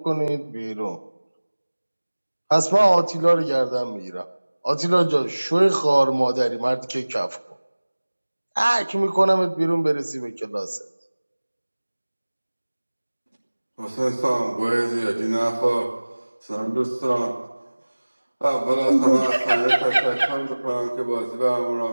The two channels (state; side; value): inverted; both; correlation -1.00